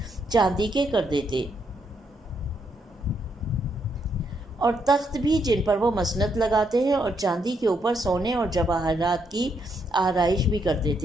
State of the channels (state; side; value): normal; both; correlation 0.76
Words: چاندی کے کر دیتے اور تخت بھی جن پر وہ مسند لگاتے ہیں اور چاندی کے اوپر سونے اور جواہرات کی آرائش بھی کر